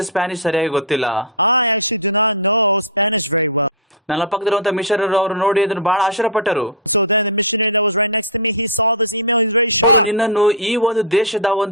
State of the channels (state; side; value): normal; both; correlation -0.10